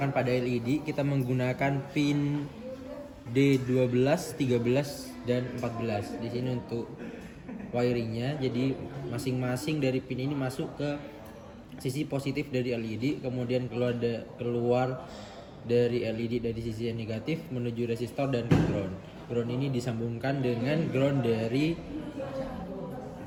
pada LED, kita menggunakan pin D12, 13, dan 14. Di sini untuk wiringnya, jadi masing-masing dari pin ini masuk ke sisi positif dari LED, kemudian keluar dari LED dari sisi yang negatif menuju resistor dan ke ground. Ground ini disambungkan dengan ground dari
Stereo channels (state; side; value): identical; both; correlation 1.00